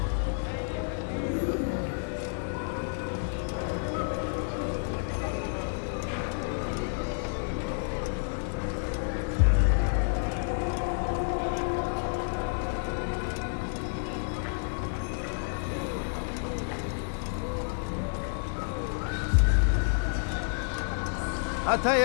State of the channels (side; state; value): right; silent; digital silence